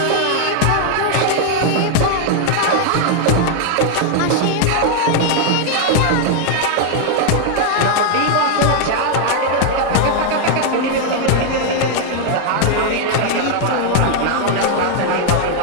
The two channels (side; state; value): both; different; correlation 0.00